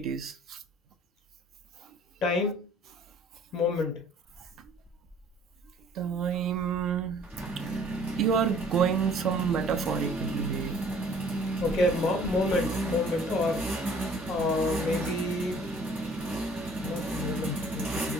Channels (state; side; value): normal; both; correlation 0.55